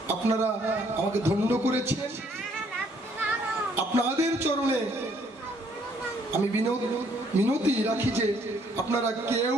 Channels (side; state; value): both; normal; correlation 0.65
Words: আপনারা আমাকে ধন্য করেছেন, আপনাদের চরণে আমি মিনতি রাখি যে আপনারা কেউ